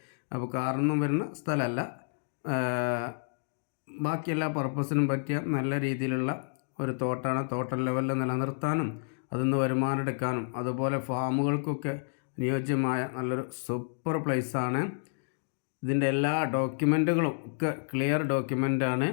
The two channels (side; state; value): right; silent; digital silence